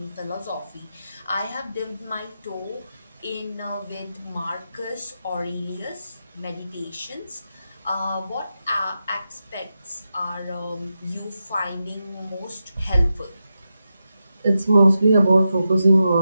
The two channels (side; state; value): both; inverted; correlation -0.89